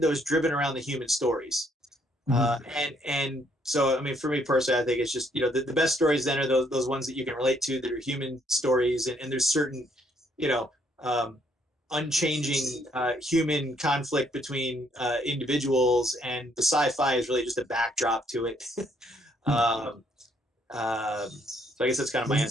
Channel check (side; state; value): both; normal; correlation 0.69